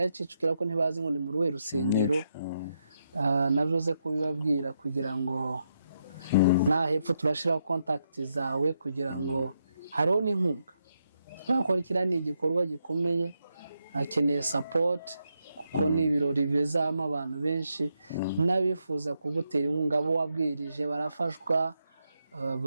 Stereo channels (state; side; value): inverted; both; correlation -0.81